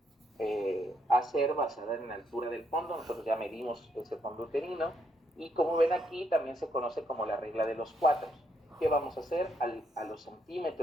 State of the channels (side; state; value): both; normal; correlation 0.75